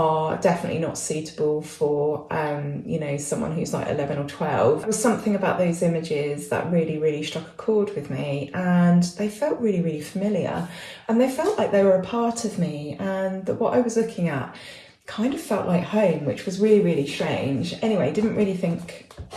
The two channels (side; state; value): both; identical; correlation 1.00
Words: definitely not suitable for, someone who's like 11 or 12. There was something about those images that really, really struck a chord with me, and they felt really, really familiar, and they felt like they were a part of me, and that what I was looking at kind of felt like home, which was really, really strange. Anyway, didn't really think